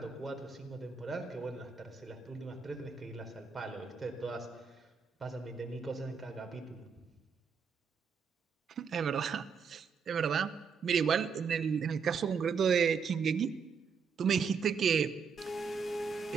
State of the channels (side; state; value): left; quieter; 6.0 dB